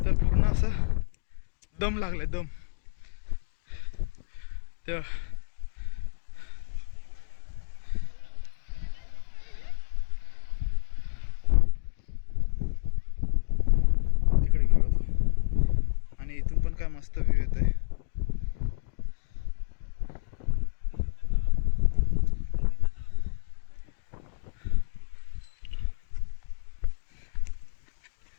तर पूर्ण असं दम लागलाय दम. तर तिकडे गेलो होतो आणि इथून पण काय मस्त व्ह्यू येत आहे.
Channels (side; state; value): right; quieter; 38.9 dB